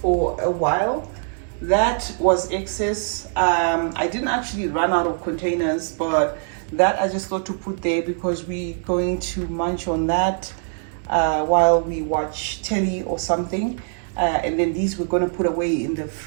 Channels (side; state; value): left; silent; 64 dB below the other